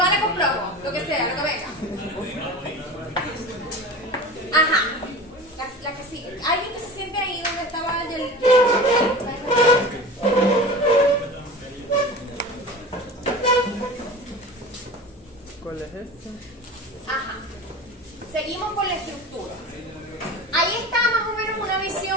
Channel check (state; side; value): normal; both; correlation 0.33